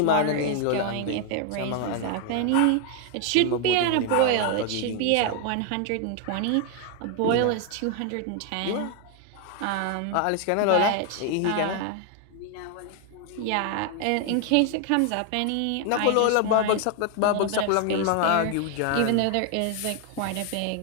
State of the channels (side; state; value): both; different; correlation 0.00